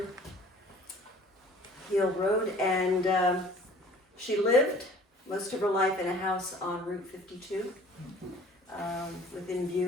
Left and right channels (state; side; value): normal; both; correlation 0.50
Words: and she lived most of her life in a house on Route 52, within